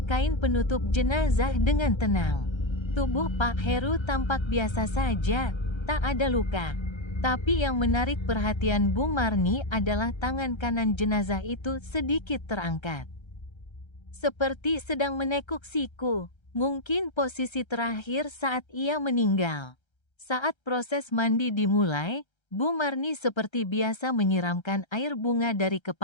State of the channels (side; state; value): right; late; 1.3 ms